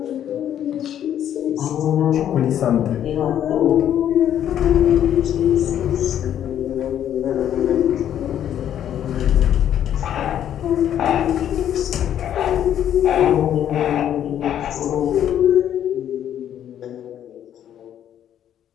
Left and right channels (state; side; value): quieter; right; 10.4 dB